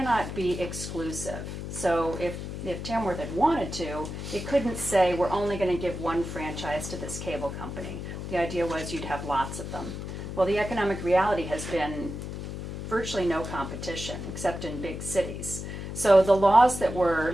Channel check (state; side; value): noise; left; hum, 7 dB below the sound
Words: be exclusive. So if Tamworth had wanted to, it couldn't say we're only going to give one franchise to this cable company. The idea was you'd have lots of them. Well, the economic reality has been virtually no competition except in big cities. So the laws that